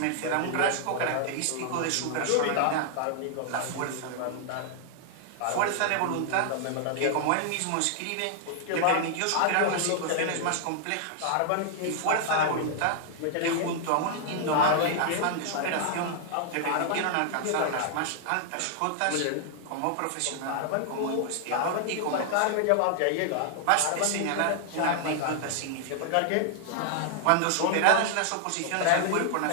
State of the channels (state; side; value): different; both; correlation 0.00